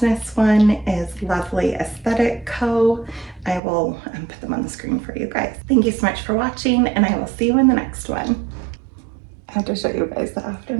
one is Lovely Aesthetic Co. I will put them on the screen for you guys. Thank you so much for watching, and I will see you in the next one. I have to show you guys the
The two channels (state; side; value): drops out; left; at 3.6 s